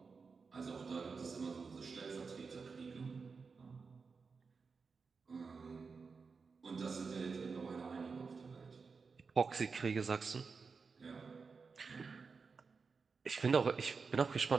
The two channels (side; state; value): left; quieter; 4.9 dB